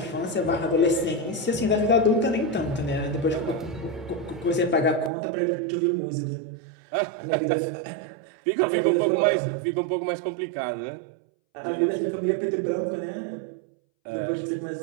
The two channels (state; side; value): drops out; left; at 5.1 s